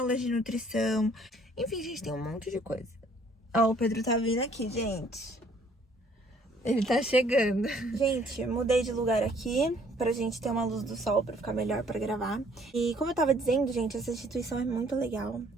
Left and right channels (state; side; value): normal; both; correlation 0.60